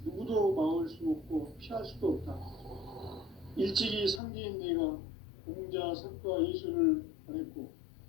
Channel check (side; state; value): right; drops out; at 4.2 s